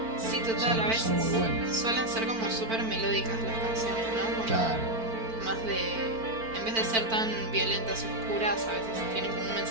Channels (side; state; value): left; late; 4.4 ms